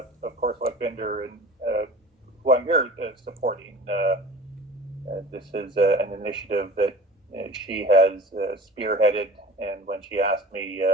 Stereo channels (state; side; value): normal; both; correlation 0.40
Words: of course, Lakwinder, and who I'm here supporting. This is an initiative that she has spearheaded, and when she asked me